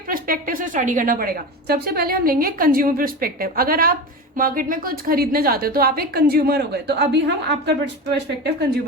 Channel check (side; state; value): both; normal; correlation 0.26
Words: पर्सपेक्टिव से स्टडी करना पड़ेगा. सबसे पहले हम लेंगे कंज्यूमर पर्सपेक्टिव. अगर आप मार्केट में कुछ खरीदने जाते हो तो आप एक कंज्यूमर हो गए. तो अभी हम आपका पर्सपेक्टिव